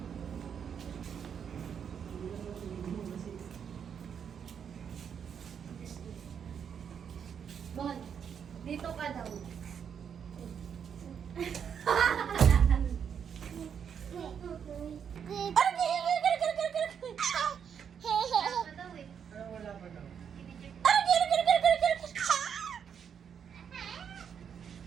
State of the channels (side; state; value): left; quieter; 7.7 dB